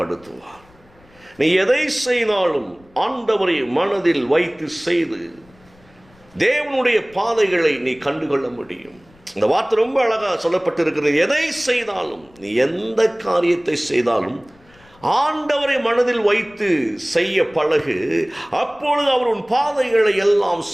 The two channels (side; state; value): left; noise; rumble, 29 dB below the sound